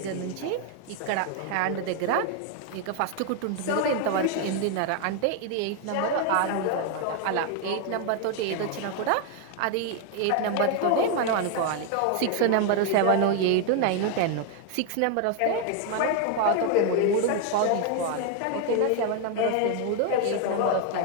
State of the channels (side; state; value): both; different; correlation 0.01